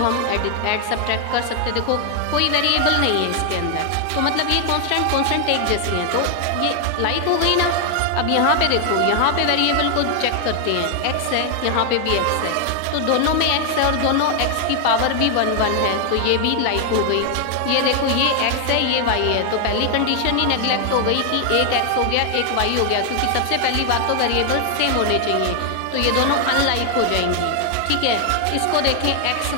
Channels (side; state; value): both; different; correlation 0.00